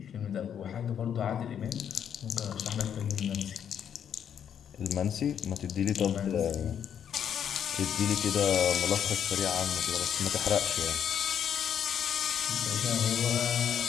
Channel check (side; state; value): right; quieter; 8.7 dB